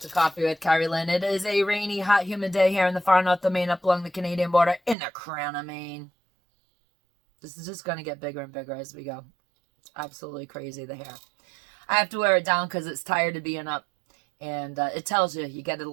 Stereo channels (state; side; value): drops out; left; at 5.0 s